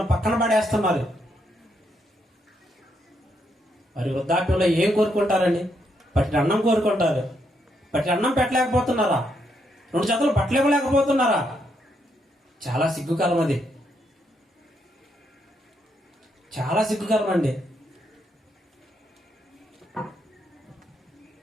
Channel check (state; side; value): normal; both; correlation 0.77